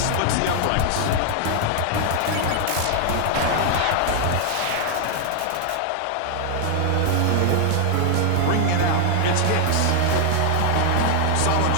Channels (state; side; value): different; both; correlation 0.00